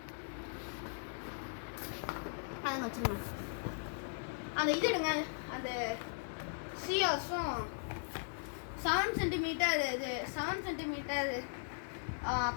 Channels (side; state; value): right; silent; digital silence